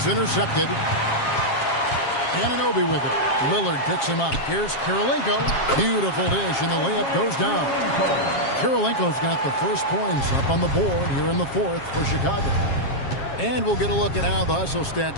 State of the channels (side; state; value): right; late; 7.4 ms